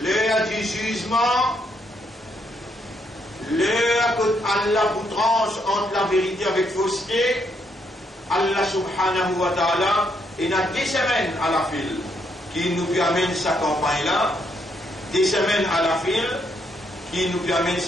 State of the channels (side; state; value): both; normal; correlation 0.75